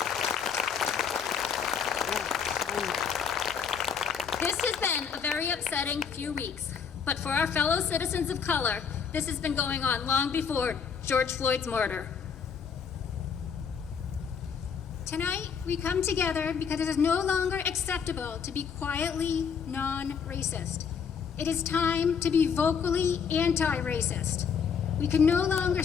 This has been a very upsetting few weeks, but for our fellow citizens of color, this has been going on long before George Floyd's murder. Tonight, we come together because it is no longer acceptable to be quietly non-racist. It is time to be vocally anti-racist. We can no longer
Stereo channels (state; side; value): quieter; right; 6.6 dB